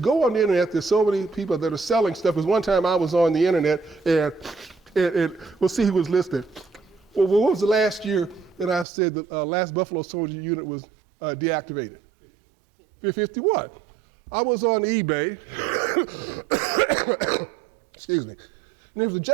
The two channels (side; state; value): left; drops out; at 8.8 s